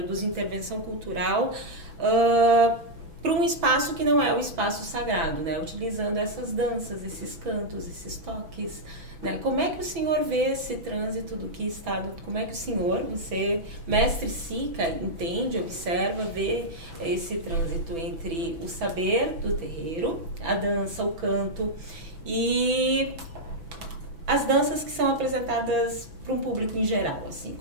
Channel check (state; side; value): late; left; 6.1 ms